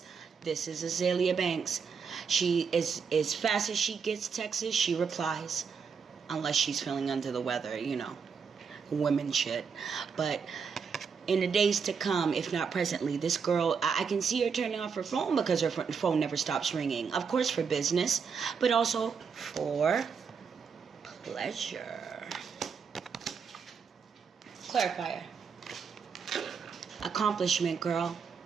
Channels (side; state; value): left; quieter; 6.0 dB